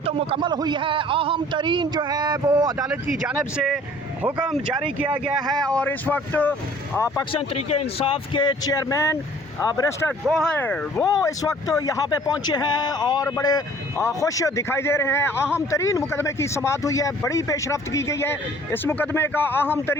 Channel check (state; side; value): normal; both; correlation 0.53